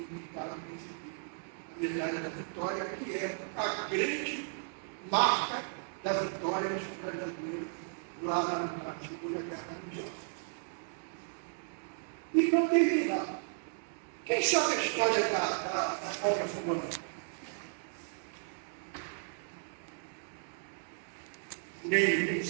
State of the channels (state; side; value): silent; left; digital silence